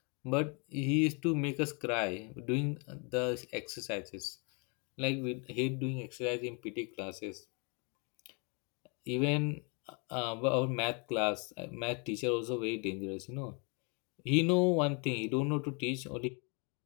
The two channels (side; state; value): right; quieter; 34.4 dB